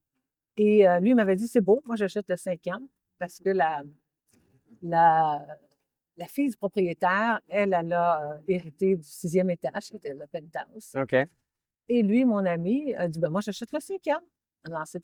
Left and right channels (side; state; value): both; identical; correlation 1.00